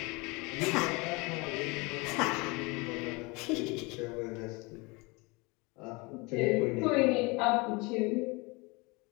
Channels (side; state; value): right; quieter; 26.8 dB